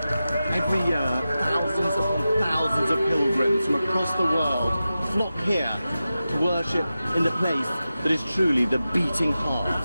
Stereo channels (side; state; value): both; inverted; correlation -0.93